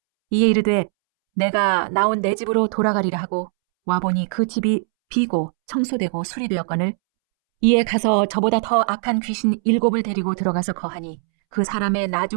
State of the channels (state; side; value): silent; left; 65 dB below the other